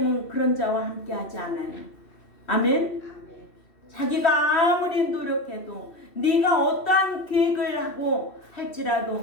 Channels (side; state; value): right; late; 2.7 ms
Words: 그런 자와 함께 하지 않아요. 아멘? 자기가 아무리 노력해도 네가 어떠한 계획을 하고